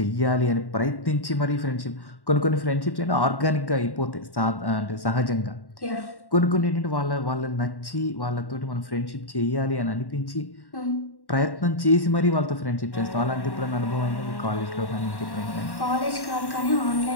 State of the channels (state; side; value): late; right; 1.1 ms